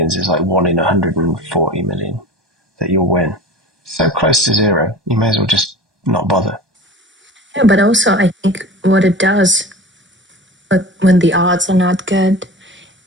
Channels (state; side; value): normal; both; correlation 0.36